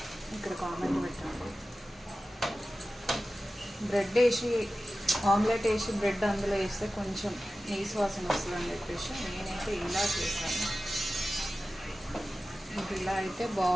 ఇక్కడ కామెంట్ పెట్టండి. బ్రెడ్ వేసి ఆమ్లెట్ వేసి బ్రెడ్ అందులో వేస్తే కొంచెం నీసు వాసన వస్తుందని చెప్పేసి నేనైతే ఇలా చేస్తాను. ఇలా అయితే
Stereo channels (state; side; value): normal; both; correlation 0.95